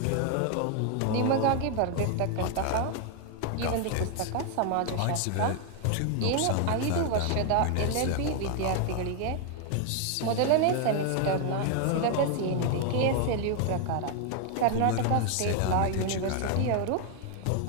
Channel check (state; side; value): different; both; correlation 0.00